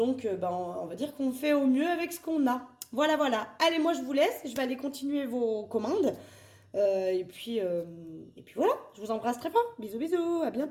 on va dire qu'on fait au mieux avec ce qu'on a. Voilà, voilà. Allez, moi, je vous laisse. Je vais aller continuer vos commandes. Et puis voilà. Je vous embrasse très fort. Bisous, bisous. À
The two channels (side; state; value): both; identical; correlation 1.00